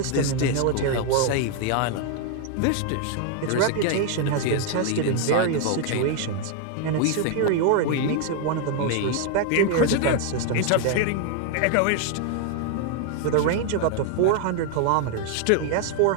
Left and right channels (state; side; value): different; both; correlation 0.00